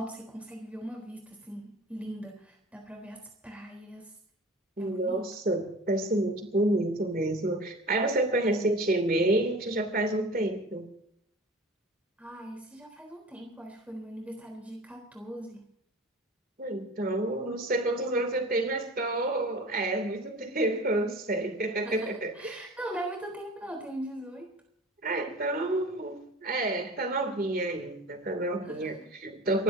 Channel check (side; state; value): both; normal; correlation 0.39